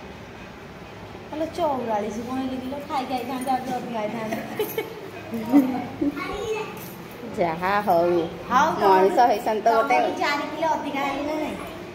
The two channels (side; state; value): both; identical; correlation 1.00